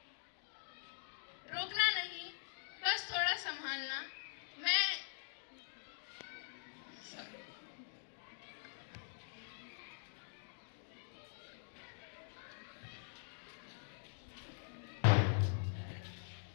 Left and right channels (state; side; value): silent; right; digital silence